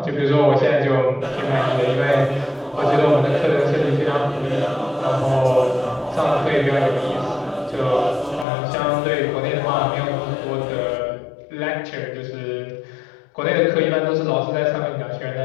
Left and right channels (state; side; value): drops out; right; at 8.5 s